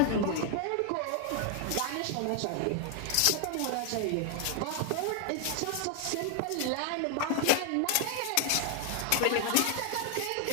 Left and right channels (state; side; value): different; both; correlation 0.00